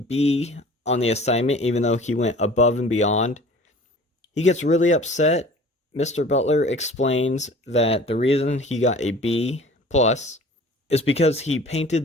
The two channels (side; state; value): both; normal; correlation 0.46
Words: on the assignment even though he went above and beyond. He gets really upset. Mr. Butler explains that the reason he got a B plus is because he